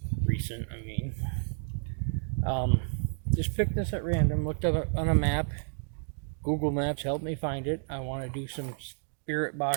Recent, I mean. Just picked this at random, looked up on a map. Google Maps helped me find it. I want to do some spirit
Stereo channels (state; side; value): silent; left; digital silence